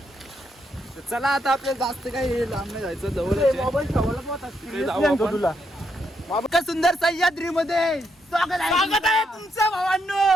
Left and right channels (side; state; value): both; normal; correlation 0.78